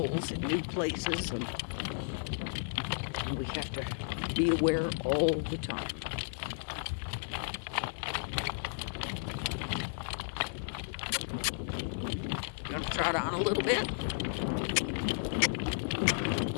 in new places, and we have to be aware all the time. Gonna trot on a little bit.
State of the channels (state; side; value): silent; right; 55 dB below the other